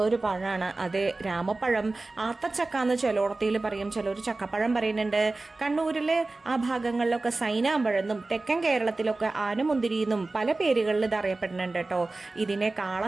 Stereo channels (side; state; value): left; quieter; 3.3 dB